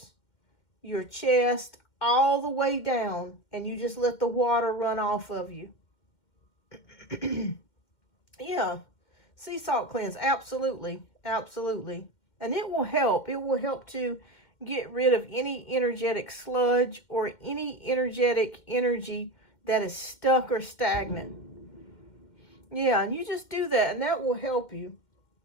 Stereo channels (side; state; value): right; late; 2.1 ms